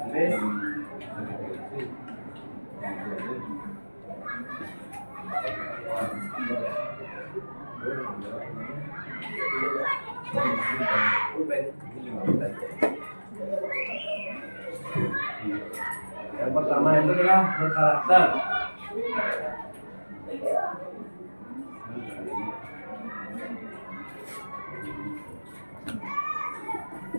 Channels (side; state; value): both; inverted; correlation -1.00